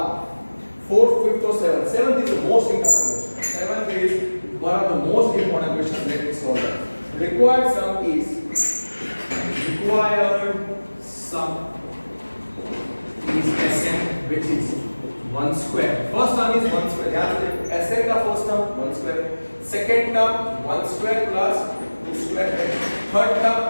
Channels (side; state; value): both; inverted; correlation -1.00